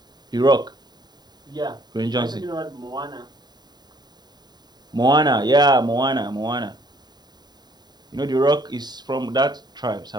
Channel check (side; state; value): left; late; 0.20 ms